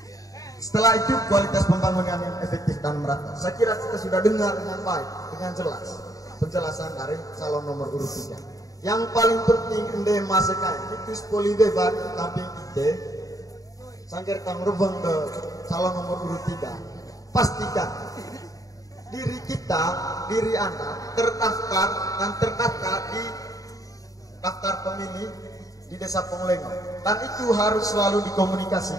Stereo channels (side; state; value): right; late; 0.17 ms